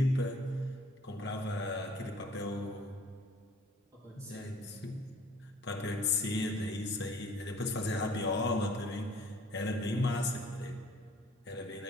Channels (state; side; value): normal; both; correlation 0.55